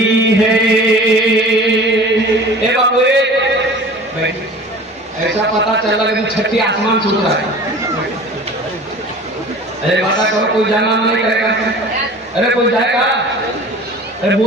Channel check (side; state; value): both; normal; correlation 0.41